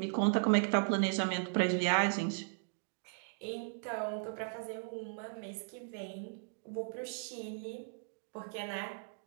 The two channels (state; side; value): silent; left; digital silence